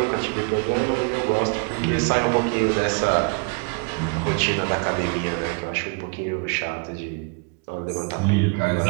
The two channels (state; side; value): quieter; left; 34.9 dB